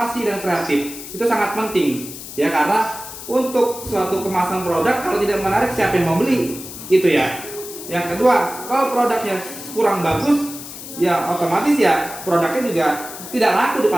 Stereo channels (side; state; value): left; noise; hiss, 12 dB below the sound